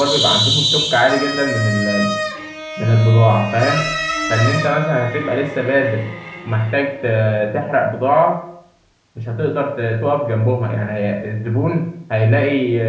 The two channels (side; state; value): both; identical; correlation 1.00